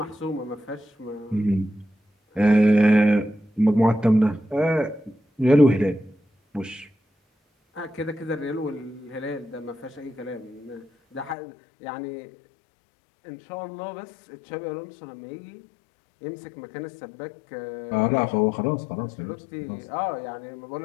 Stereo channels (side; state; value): right; drops out; at 11.4 s